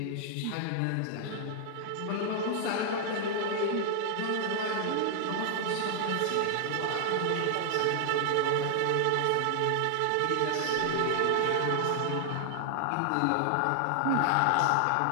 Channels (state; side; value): different; both; correlation 0.00